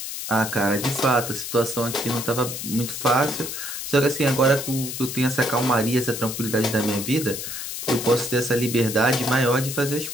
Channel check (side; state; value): left; noise; hiss, 6 dB below the sound